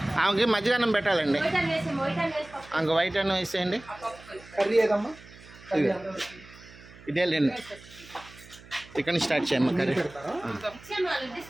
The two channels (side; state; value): right; noise; hum, 21 dB below the sound